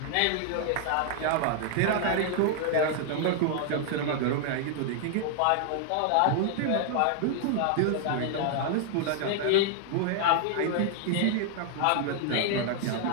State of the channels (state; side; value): different; both; correlation 0.00